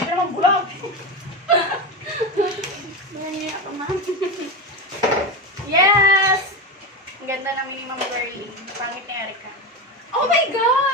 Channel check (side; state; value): both; normal; correlation 0.18